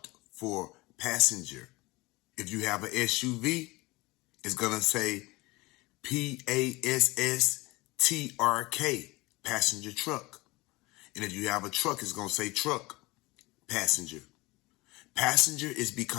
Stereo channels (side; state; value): right; quieter; 22.4 dB